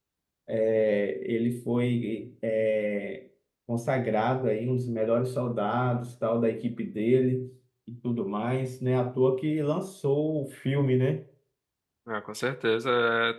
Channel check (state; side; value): identical; both; correlation 1.00